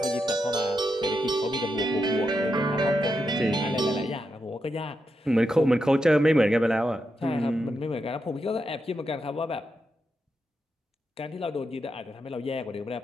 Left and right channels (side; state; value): both; normal; correlation 0.85